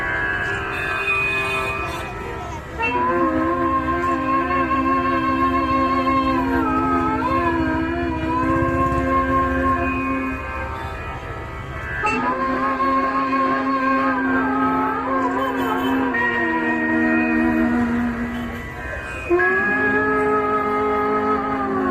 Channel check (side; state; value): both; identical; correlation 1.00